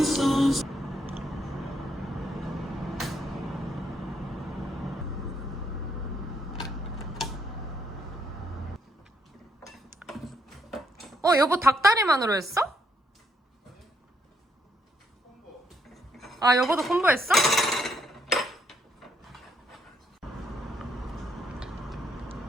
여보 닭다리만으로 했어? 아, 여보도 공부했어?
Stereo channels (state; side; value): normal; both; correlation 0.74